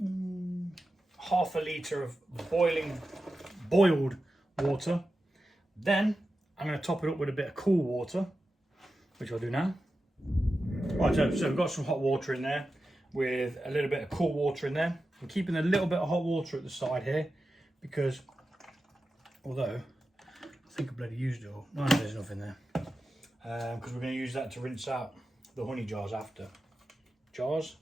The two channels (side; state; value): both; normal; correlation 0.92